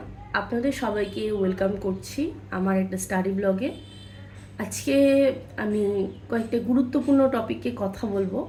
আপনাদের সবাইকে ওয়েলকাম করছি আমার একটা স্টাডি ব্লগে। আজকে আমি কয়েকটা গুরুত্বপূর্ণ টপিকে কথা বলবো।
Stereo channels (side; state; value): both; identical; correlation 1.00